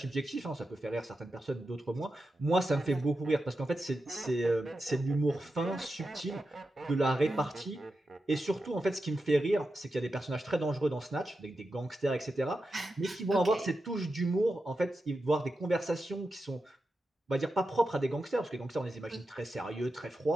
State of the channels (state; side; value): normal; both; correlation 0.89